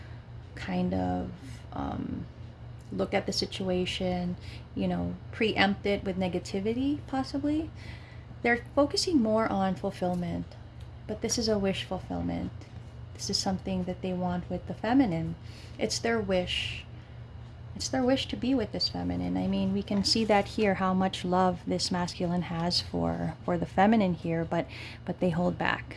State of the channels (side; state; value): both; identical; correlation 1.00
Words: kind of look at the situation, you know, preempt it with negativity, possibly. They're focusing more on fulfillment, but this is a wish fulfillment. This is something that they want with the feminine. It's their wish. It's their wish to be with this feminine. I mean, we can see that here, how much love this masculine has for the feminine here, but they hold back.